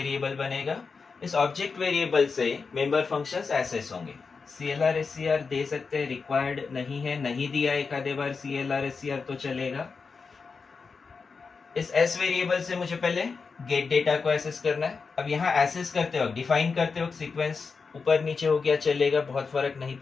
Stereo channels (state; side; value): quieter; right; 4.9 dB